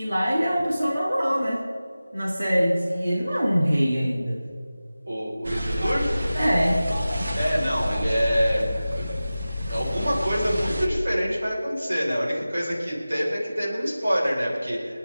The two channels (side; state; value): both; inverted; correlation -0.96